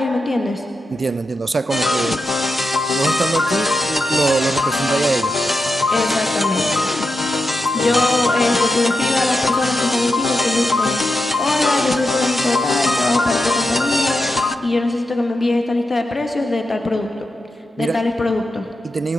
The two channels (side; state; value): both; normal; correlation 0.88